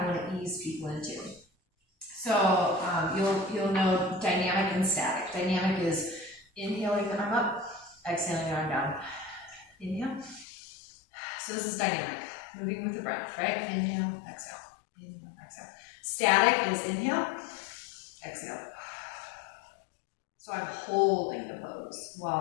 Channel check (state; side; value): drops out; right; at 10.5 s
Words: want to ease people into. So you'll know dynamic and static. Dynamic is inhaling the arm up, exhaling the arm down. Inhale. So this is dynamic, moving with the breath, right? Inhale, exhale. Inhale, exhale. Static is inhale, exhale. So I'm holding the pose